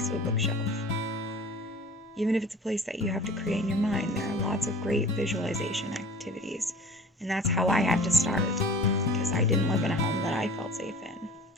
to a bookshelf. Even if it's a place that you have to create in your mind, there are lots of great visualization activities. And that's how I had to start, because I didn't live in a home that I felt safe in.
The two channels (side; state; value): both; normal; correlation 0.43